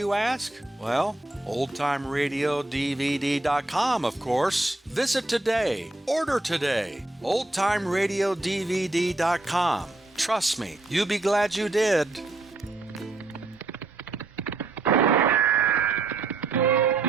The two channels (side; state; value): left; quieter; 3.0 dB